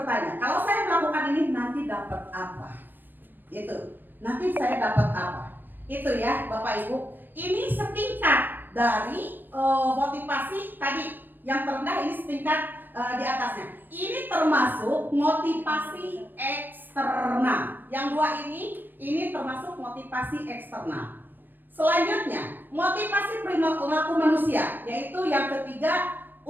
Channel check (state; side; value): late; left; 0.091 ms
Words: kalau saya melakukan ini nanti dapat apa? Itu, nanti saya dapat apa? Itu ya Bapak Ibu. Ini setingkat dari motivasi tadi yang terendah, ini setingkat di atasnya. Ini termasuk motivasi eksternal. Yang dua ini termasuk motivasi eksternal. Selanjutnya, motivasi perilaku manusia, yaitu yang ketiga,